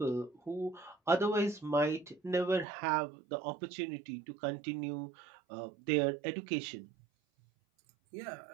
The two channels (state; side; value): drops out; left; at 2.7 s